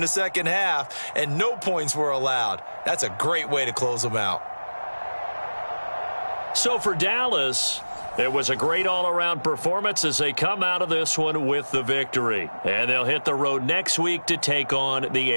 the 2nd half, and no points were allowed. That's a great way to close them out. So for Dallas, it was a great all-around performance as they come out of this one with the victory. And they'll hit the road next week to take on the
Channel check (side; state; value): both; inverted; correlation -1.00